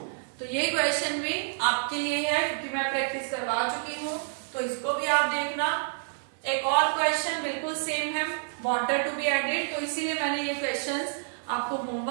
तो ये क्वेश्चन भी आपके लिए है क्योंकि मैं प्रैक्टिस करवा चुकी हूँ, तो इसको भी आप देखना। एक और क्वेश्चन बिल्कुल सेम है, वाटर टू बी एडेड, तो इसीलिए मैंने ये क्वेश्चंस आपको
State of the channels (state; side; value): silent; left; 57 dB below the other